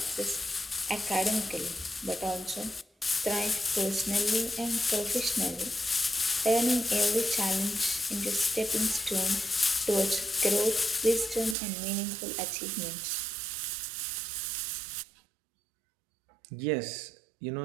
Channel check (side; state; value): left; drops out; at 11.6 s